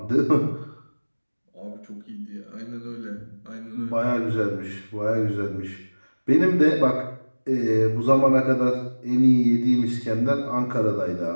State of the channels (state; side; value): inverted; both; correlation -1.00